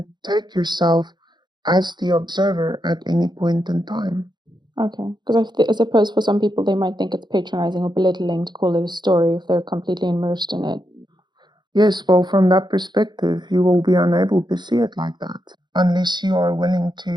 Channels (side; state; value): left; late; 0.21 ms